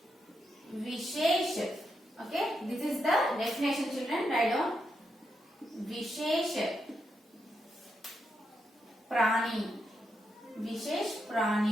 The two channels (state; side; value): normal; both; correlation 0.83